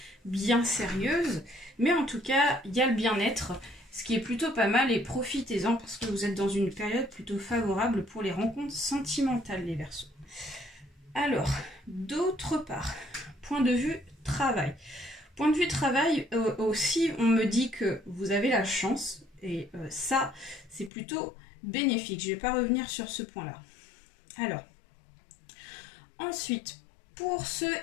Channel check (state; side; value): drops out; right; at 20.9 s